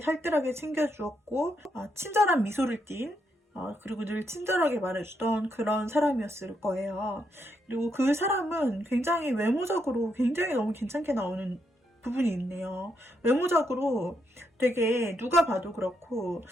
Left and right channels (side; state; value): both; normal; correlation 0.79